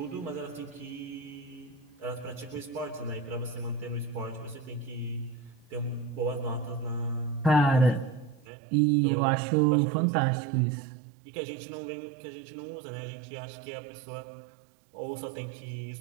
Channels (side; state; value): left; drops out; at 8.5 s